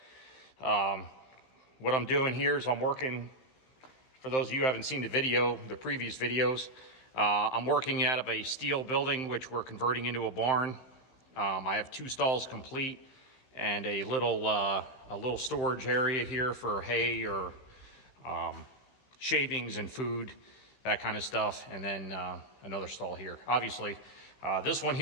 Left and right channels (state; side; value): late; right; 15 ms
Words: what I'm doing here is I'm working. For those of you who haven't seen the previous videos, I'm working out of a steel building, which we're converting into a barn. I have 2 stalls complete and a little storage area here for hay or shavings and food, that kind of stuff. And then another stall here. Obviously, this one